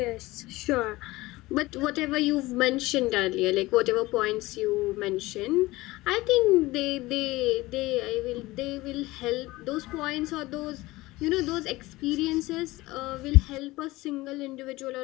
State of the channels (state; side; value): quieter; right; 19.6 dB